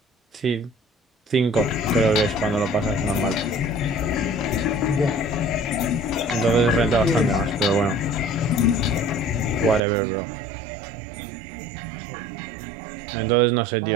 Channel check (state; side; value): drops out; left; at 9.8 s